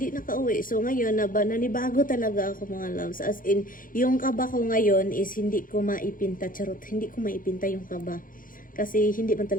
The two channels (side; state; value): right; late; 0.40 ms